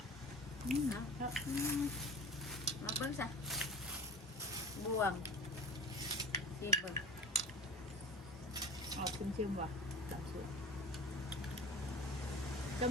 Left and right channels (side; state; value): both; normal; correlation 0.37